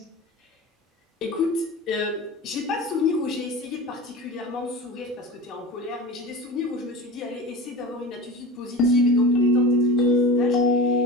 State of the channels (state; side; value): normal; both; correlation 0.31